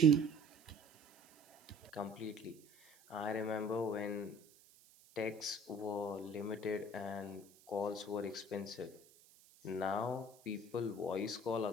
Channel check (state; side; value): noise; right; hiss, 26 dB below the sound